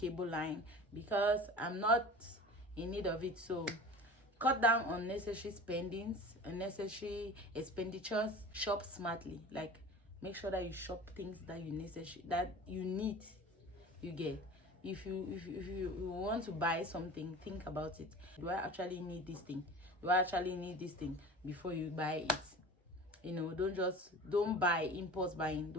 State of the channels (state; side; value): normal; both; correlation 0.37